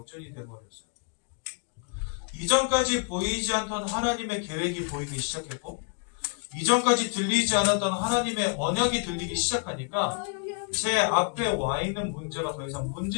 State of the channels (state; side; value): quieter; right; 38.1 dB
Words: 되어버렸어요. 이전까지 보이지 않던 하나님의 계획이 보이기 시작했고, 이전까지 들리지 않았던 하나님의 언약이 들리기 시작하니까 제 앞에 와 있는 문제가 더 이상